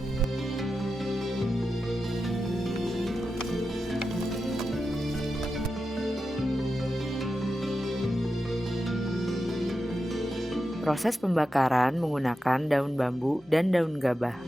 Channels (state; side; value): normal; both; correlation 0.90